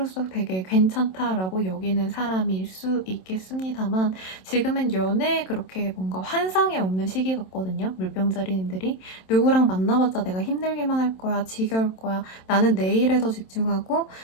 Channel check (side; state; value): right; late; 27 ms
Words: 되게 괜찮다라고 여기는 사람일 수 있겠습니다만 지금은 연애에 그렇게 뭔가 환상이 없는 시기 같거든요. 물병자리님들이 누구랑 만나봤자 내가 힘들기만 할 거야, 지겨울 거야, 나는 내 일에 더 집중하고